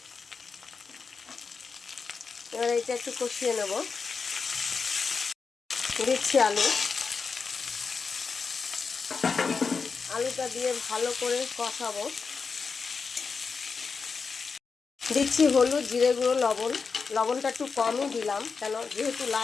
এবার এটা একটু কষিয়ে নেব। দিচ্ছি আলু। আলুটা দিয়ে ভালো করে কষাবো। দিচ্ছি হলুদ, জিরে গুঁড়ো, লবণ। লবণটা একটু কমই দিলাম, কেন যেহেতু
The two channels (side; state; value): right; quieter; 5.1 dB